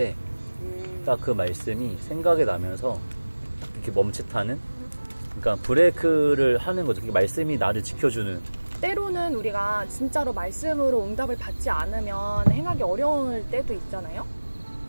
딱 그 말씀이 생각이 나면서 이렇게 멈칫하는, 그러니까 브레이크를 하는 거죠. 말씀이 나를 지켜주는. 때로는 우리가 진짜로 말씀으로 응답을 받지 않으면 행하기 어려울 때도 있잖아요.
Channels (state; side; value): inverted; both; correlation -1.00